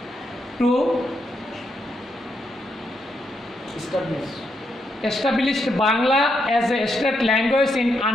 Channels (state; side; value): normal; both; correlation 0.80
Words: to establish Bangla as a state language in